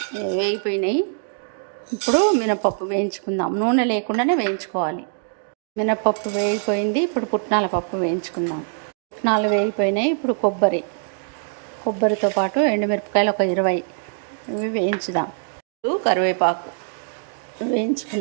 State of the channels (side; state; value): left; silent; digital silence